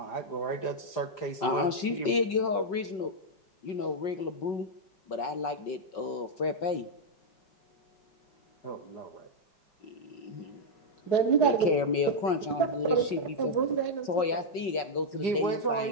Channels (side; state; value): right; late; 5.4 ms